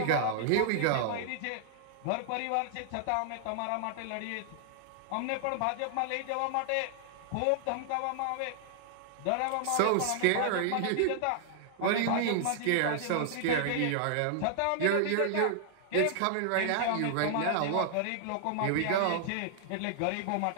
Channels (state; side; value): different; both; correlation 0.00